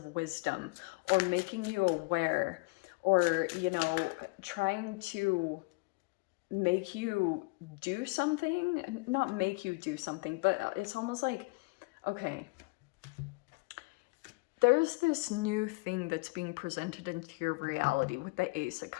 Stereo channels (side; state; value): right; quieter; 27.6 dB